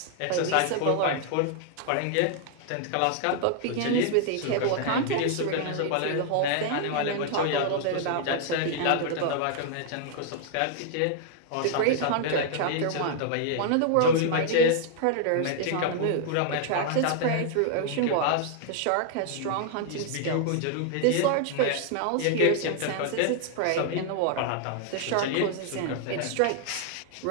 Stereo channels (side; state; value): both; different; correlation 0.00